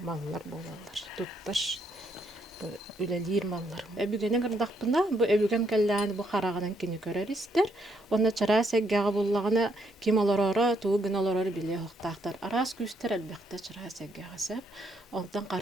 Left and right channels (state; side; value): normal; both; correlation 0.74